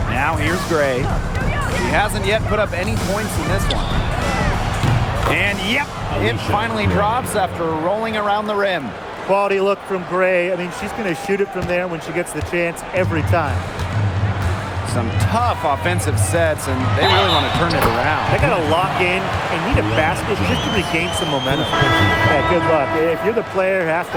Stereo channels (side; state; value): both; identical; correlation 1.00